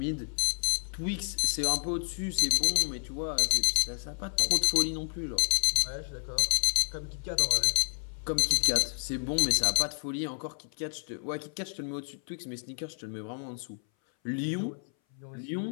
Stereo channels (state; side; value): silent; right; 58 dB below the other